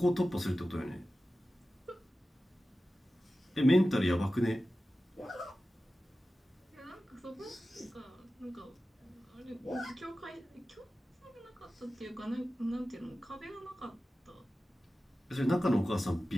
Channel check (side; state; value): both; normal; correlation 0.95